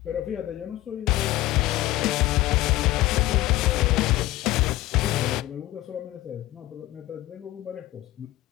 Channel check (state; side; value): quieter; right; 16.5 dB